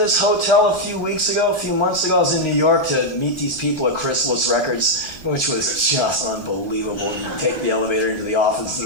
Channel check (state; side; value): late; right; 1.4 ms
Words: hotel a few months ago. I was in New York to meet these people at Chrysalis Records, which was just unbelievable. You take the elevator into the office